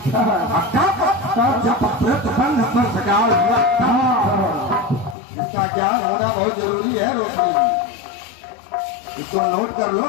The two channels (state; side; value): drops out; right; at 5.2 s